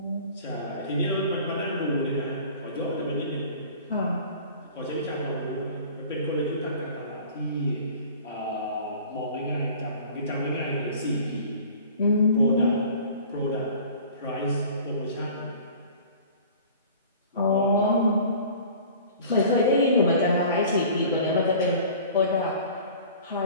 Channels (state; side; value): inverted; both; correlation -0.45